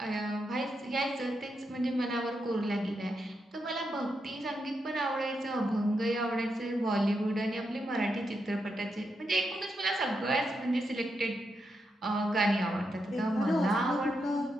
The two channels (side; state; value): both; normal; correlation 0.84